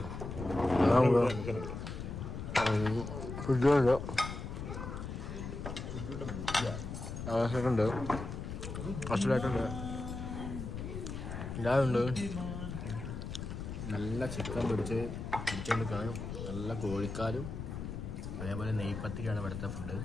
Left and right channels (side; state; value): left; noise; rumble, 7 dB below the sound